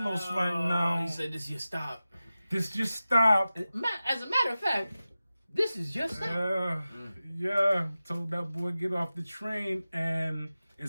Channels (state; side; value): inverted; both; correlation -0.95